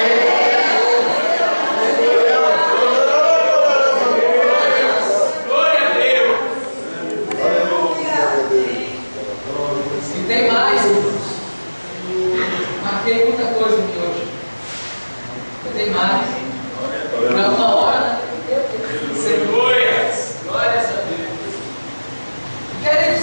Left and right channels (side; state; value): both; inverted; correlation -1.00